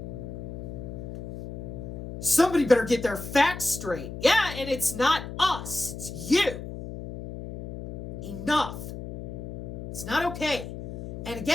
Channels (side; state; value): left; noise; hum, 9 dB below the sound